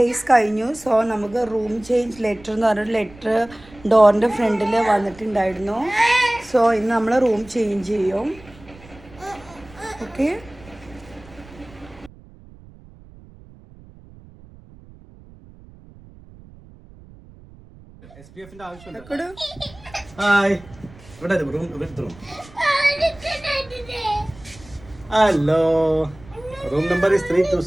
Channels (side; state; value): right; noise; rumble, 22 dB below the sound